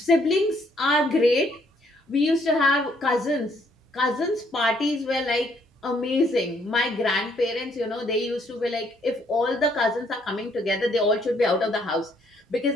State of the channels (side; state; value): both; normal; correlation 0.68